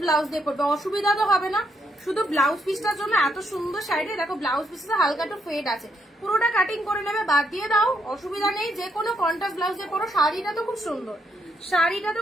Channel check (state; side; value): normal; both; correlation 0.76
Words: ব্লাউজ দিয়ে পরবে, অসুবিধা তো হবে না। শুধু ব্লাউজ পিসটার জন্য এত সুন্দর শাড়িটা। দেখো ব্লাউজ পিসটা হালকা একটু ফেড আছে, পুরোটা কাটিং করে নেবে, বাদ দিয়ে দাও, অসুবিধা নেই। যে কোনো কন্ট্রাস্ট ব্লাউজ দিয়ে পরো। শাড়িটা তো খুব সুন্দর, শাড়িটা তো